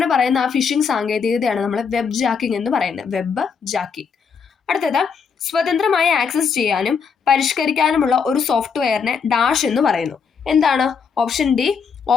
പറയുന്ന ആ ഫിഷിംഗ് സാങ്കേതികതയാണ് നമ്മൾ വെബ് ജാക്കിംഗ് എന്ന് പറയുന്നത്. Web jacking. അടുത്തത്, സ്വതന്ത്രമായി ആക്സസ് ചെയ്യാനും പരിഷ്കരിക്കാനുമുള്ള ഒരു സോഫ്റ്റ്വെയറിനെ ഡാഷ് എന്ന് പറയുന്നു. എന്താണ്? Option D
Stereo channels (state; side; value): quieter; right; 6.1 dB